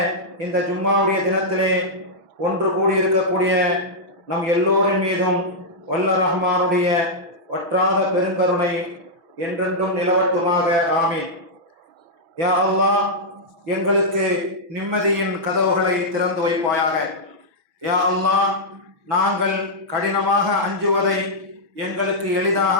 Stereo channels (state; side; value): late; left; 6.1 ms